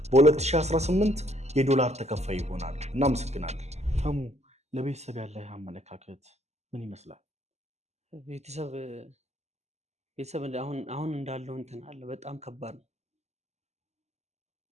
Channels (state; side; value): late; left; 0.32 ms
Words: በ2018 የዶላር ተከፋይ ይሆናል። እናመሰግናለን። ተሙ ለቤተሰብ ያለህ አመለካከት ምን ይመስላል? ቤተሰብ አሁን እንዳለው እንትን አለ በጣም ከባድ ነው።